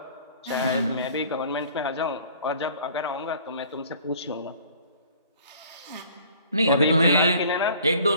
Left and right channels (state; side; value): inverted; both; correlation -0.52